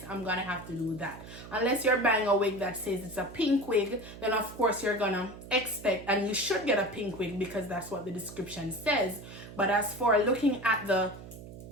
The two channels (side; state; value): right; noise; hum, 14 dB below the sound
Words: I'm going to have to do that. Unless you're buying a wig that says it's a pink wig, then of course you're going to expect, and you should get a pink wig because that's what the description says. But as for looking at the